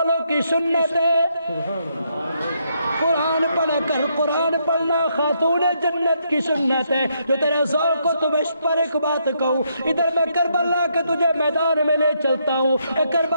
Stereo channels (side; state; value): both; inverted; correlation -0.76